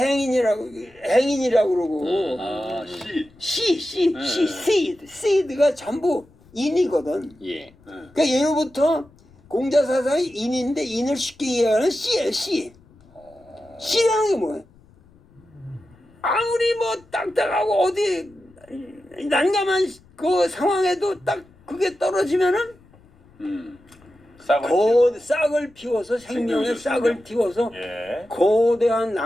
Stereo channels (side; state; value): left; noise; rumble, 28 dB below the sound